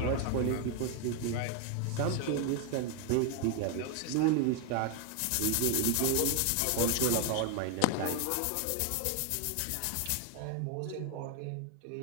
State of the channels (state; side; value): different; both; correlation 0.01